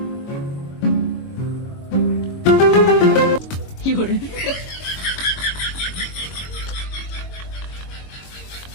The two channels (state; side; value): late; right; 22 ms